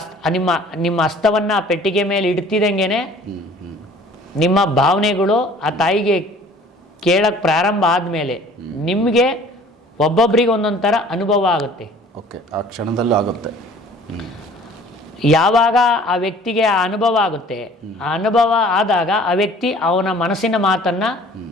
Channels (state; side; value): normal; both; correlation 0.50